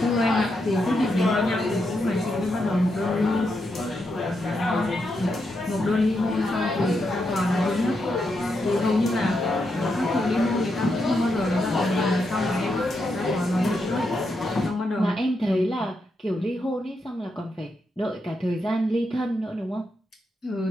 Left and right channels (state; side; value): normal; both; correlation 0.83